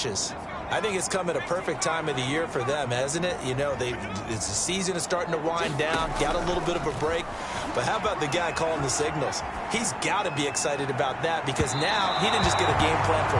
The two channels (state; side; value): identical; both; correlation 1.00